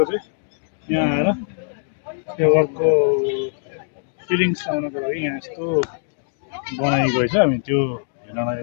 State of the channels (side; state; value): right; silent; digital silence